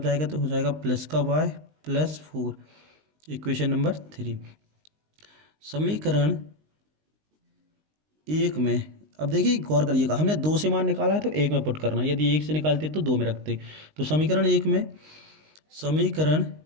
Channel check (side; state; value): left; late; 19 ms